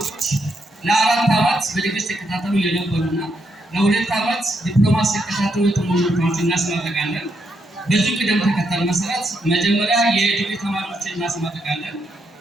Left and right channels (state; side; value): normal; both; correlation 0.79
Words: ለአራት ዓመት በዲግሪ ሲከታተሉ የነበሩና ለሁለት ዓመት ዲፕሎማሲ ሲከታተሉ የተመረቁትን እናስመርቃለን። በዚህ ቅደም ተከተል መሰረት መጀመሪያ የዲግሪ ተማሪዎችን እናስመርቃለን።